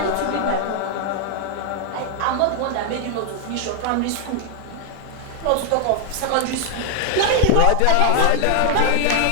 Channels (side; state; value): both; different; correlation 0.00